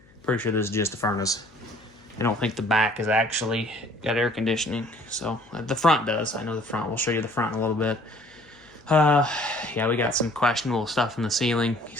Pretty sure this is just the furnace. I don't think the back is actually got air conditioning. So the front does. I know the front. We'll show you the front in a little bit. Yeah, we got some questionable stuff in the ceiling.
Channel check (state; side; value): noise; left; hum, 28 dB below the sound